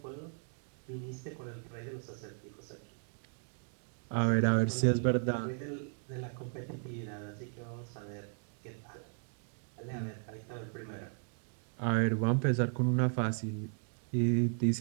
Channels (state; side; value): silent; left; 54 dB below the other